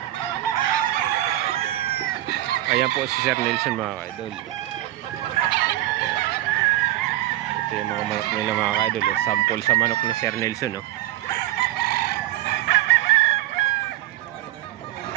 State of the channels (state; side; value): quieter; left; 15.4 dB